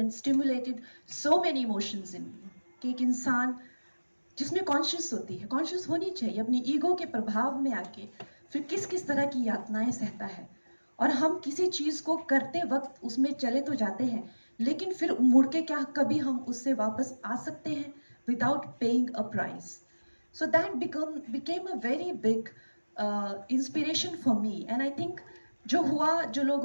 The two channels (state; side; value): inverted; both; correlation -1.00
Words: stimulated so many emotions in me. कि एक इंसान जिसमें कॉन्शियस होती है, कॉन्शियस होनी चाहिए अपनी ईगो के प्रभाव में आके, फिर किस किस तरह की यातनाएं सहता है. और हम किसी चीज को करते वक्त उसमें चले तो जाते हैं, लेकिन फिर मुड़ के क्या कभी हम उससे वापस आ सकते हैं without paying a price. So that became a very big inspiration for me. And I think जो हुआ, जो